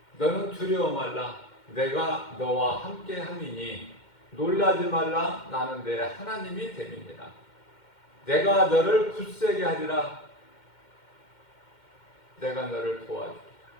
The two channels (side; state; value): right; late; 2.1 ms